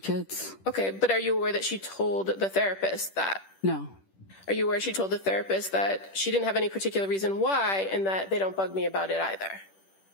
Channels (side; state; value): right; late; 10 ms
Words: Okay, but are you aware that she told the therapist that? No. Are you aware she told the therapist that she didn't have any particular reason why and that they don't bug me about it either?